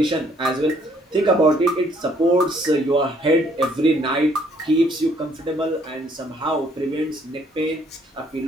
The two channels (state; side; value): normal; both; correlation 0.65